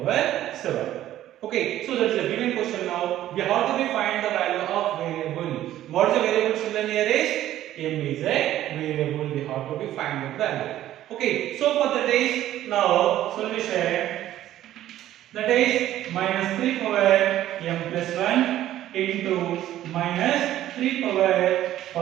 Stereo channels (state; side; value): quieter; left; 13.1 dB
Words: 7. Okay, so that's a given question now. We have to find the value of variable. What is the variable children here is? M is a variable. We have to find the value. Okay, so for that is now solution, that is minus 3 power m plus 1 into minus 3 power